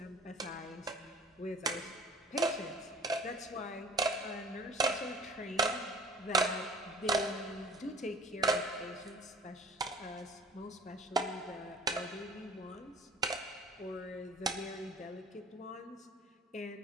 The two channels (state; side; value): normal; both; correlation 0.48